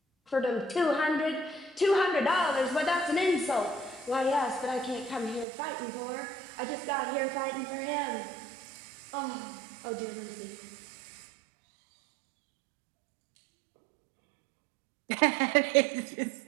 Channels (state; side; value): drops out; left; at 5.5 s